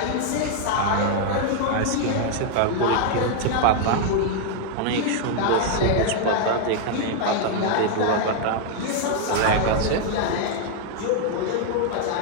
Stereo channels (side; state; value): both; different; correlation 0.00